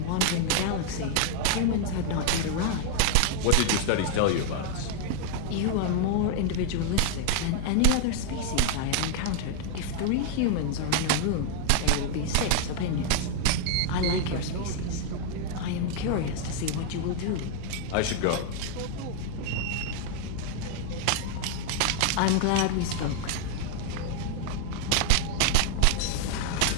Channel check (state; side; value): different; both; correlation 0.00